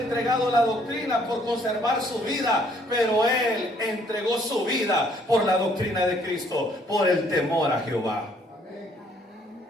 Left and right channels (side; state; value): both; normal; correlation 0.64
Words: la doctrina por conservar su vida, pero él entregó su vida por la doctrina de Cristo, por el temor a Jehová.